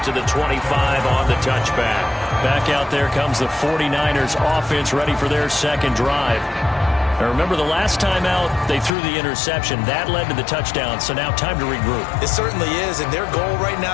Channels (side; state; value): right; drops out; at 8.9 s